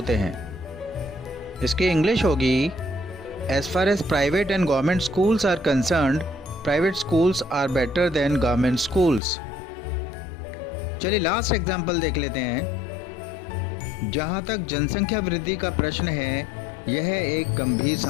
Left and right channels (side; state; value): right; drops out; at 9.2 s